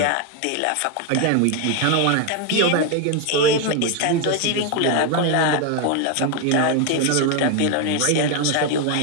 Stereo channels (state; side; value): different; both; correlation 0.01